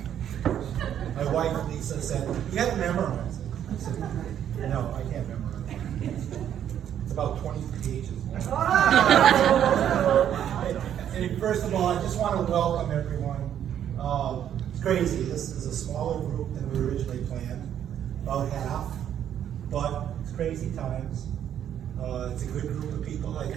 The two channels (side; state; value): left; quieter; 10.0 dB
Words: My wife, Lisa, said, "You got to memorize it." I said, "No, I can't memorize it. It's about 20 pages." And first of all, I just want to welcome everyone. It's crazy. This is a smaller group than we originally planned, about half, but it's crazy times. It's a good group of people. I